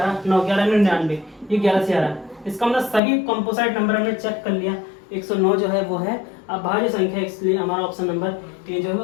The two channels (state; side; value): drops out; right; at 3.0 s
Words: 9 11 99, ये 11 से आ रहा है। इसका मतलब सभी कंपोजिट नंबर हमने चेक कर लिया। 109 जो है वो है अभाज्य संख्या, इसलिए हमारा ऑप्शन नंबर ये जो है वो